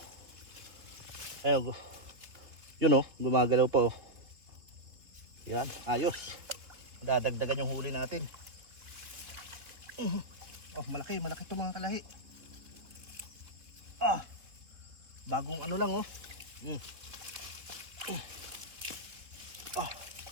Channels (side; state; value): left; late; 3.3 ms